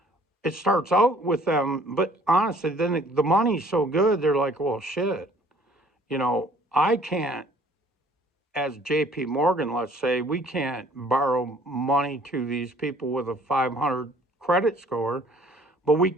it starts out with them, but honestly, then the money's so good, they're like, well, shit, I can't, as JP Morgan, let's say, we can't borrow money to these people with a 500 credit score, but we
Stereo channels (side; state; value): both; normal; correlation 0.56